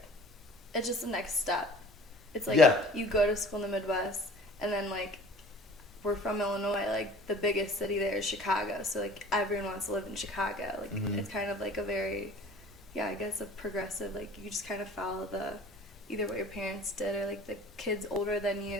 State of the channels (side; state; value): both; normal; correlation 0.47